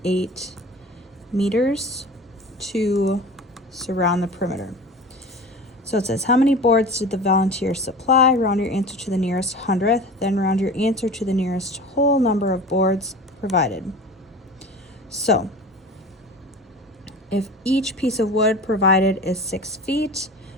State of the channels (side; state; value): both; normal; correlation 0.36